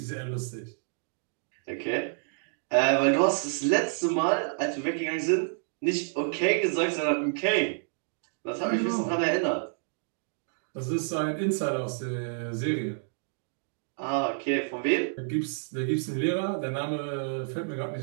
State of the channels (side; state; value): left; silent; digital silence